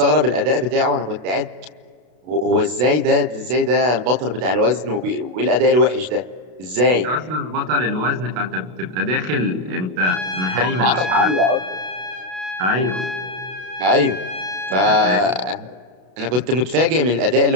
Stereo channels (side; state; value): left; late; 32 ms